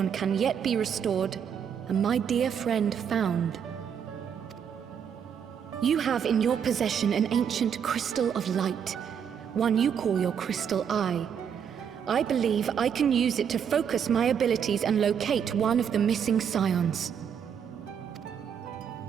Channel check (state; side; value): quieter; left; 7.8 dB